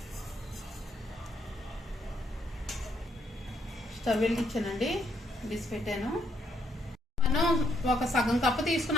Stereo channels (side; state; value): both; normal; correlation 0.74